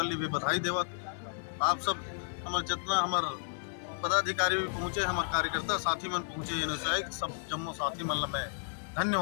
भी बधाई देवत। आप सब हमारे जितना हमारे पदाधिकारी भी पहुँचे, हमारे कार्यकर्ता साथी मन पहुँचे, ये सब जम्मो साथी मन ला मैं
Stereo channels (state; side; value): silent; right; digital silence